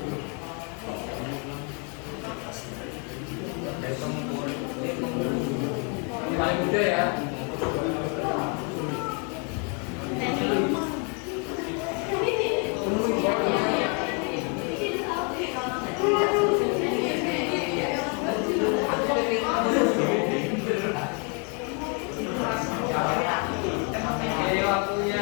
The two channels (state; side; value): quieter; right; 36.1 dB